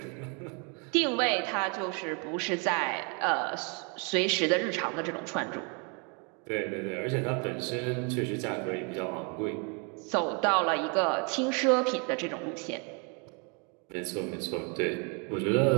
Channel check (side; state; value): left; quieter; 34.9 dB